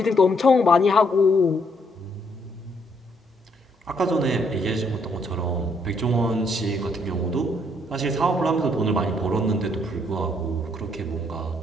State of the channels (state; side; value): normal; both; correlation 0.71